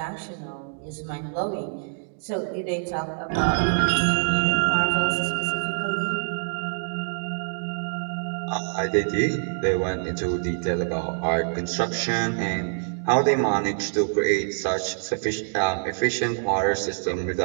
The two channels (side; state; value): left; silent; digital silence